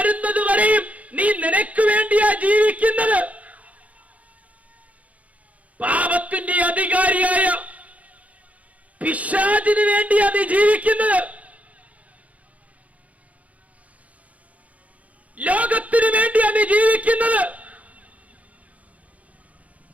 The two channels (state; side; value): late; left; 0.068 ms